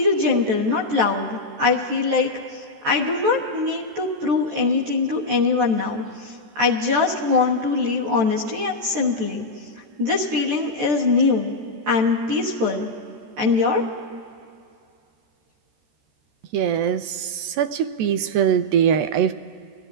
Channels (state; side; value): late; left; 14 ms